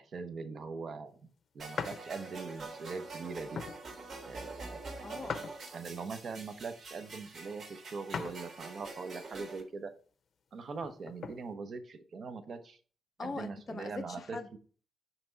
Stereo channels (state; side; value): normal; both; correlation 0.80